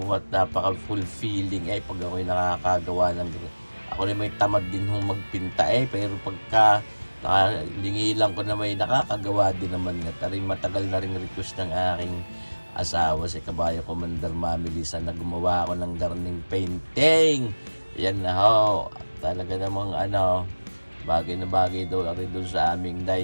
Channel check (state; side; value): inverted; both; correlation -1.00